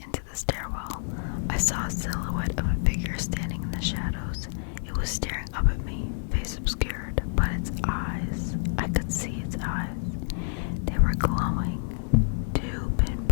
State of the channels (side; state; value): right; silent; digital silence